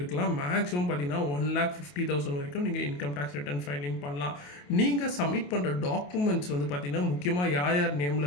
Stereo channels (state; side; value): late; right; 28 ms